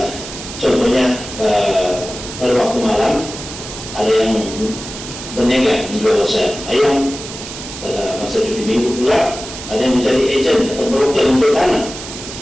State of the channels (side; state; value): right; noise; hiss, 11 dB below the sound